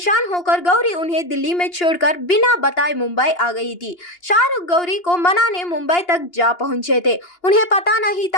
होकर गौरी उन्हें दिल्ली में छोड़कर बिना बताए मुंबई आ गई थी। शाहरुख गौरी को मनाने मुंबई तक जा पहुंचे थे। उन्हें पता नहीं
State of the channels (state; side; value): late; right; 2.8 ms